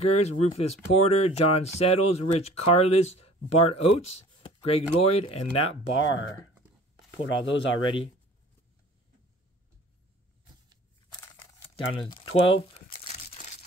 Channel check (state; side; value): normal; both; correlation 0.48